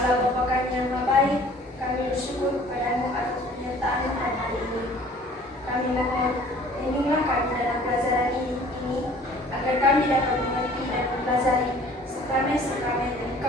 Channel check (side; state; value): both; normal; correlation 0.52